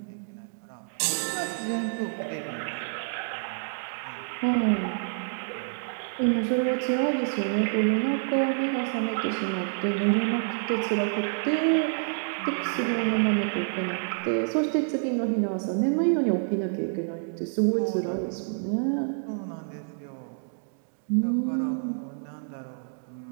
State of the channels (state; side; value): silent; left; digital silence